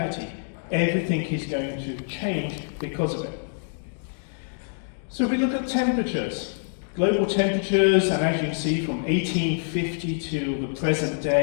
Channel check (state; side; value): silent; right; digital silence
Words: Everything is going to change because of it. So if we look at temperatures, global temperatures, and as you can see from 1850 to the present